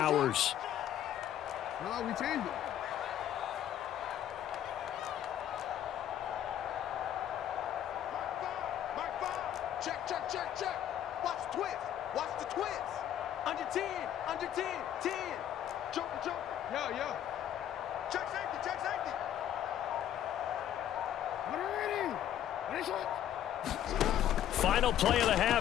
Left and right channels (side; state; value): right; quieter; 11.0 dB